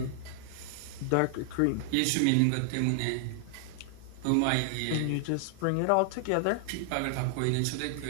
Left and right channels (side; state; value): both; different; correlation 0.00